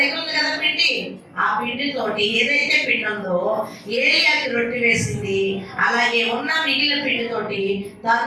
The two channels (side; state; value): both; identical; correlation 1.00